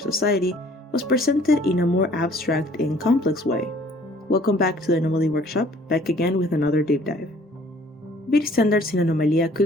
was presented in a more abstract and complex way? Welcome back to the Anomaly Workshop, back again with another deep dive. Beauty standards in Anomalia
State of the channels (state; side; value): normal; both; correlation 0.56